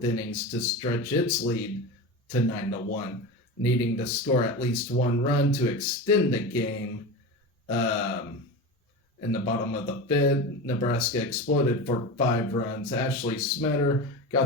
innings to stretch its lead to 9-1, needing to score at least 1 run to extend the game. In the bottom of the fifth, Nebraska exploded for 5 runs. Ashley Smetter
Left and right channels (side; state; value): both; normal; correlation 0.25